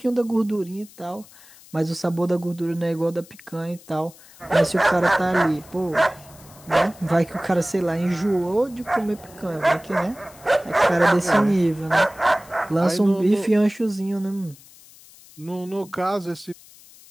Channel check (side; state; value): left; noise; hiss, 23 dB below the sound